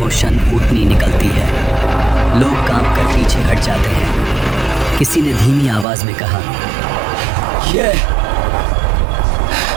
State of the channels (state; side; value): drops out; left; at 5.9 s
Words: و شان اونٹنی نکلتی ہے۔ لوگ کام کر پیچھے ہٹ جاتے ہیں۔ کسی نے دھیمی آواز میں کہا، یہ